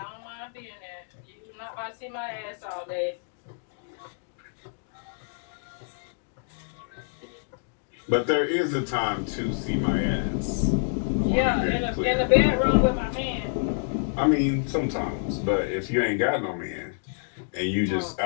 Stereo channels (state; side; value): silent; right; digital silence